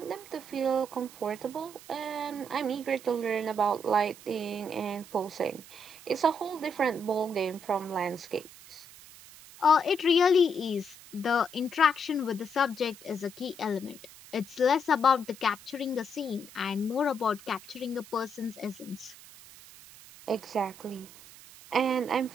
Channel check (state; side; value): noise; right; hiss, 19 dB below the sound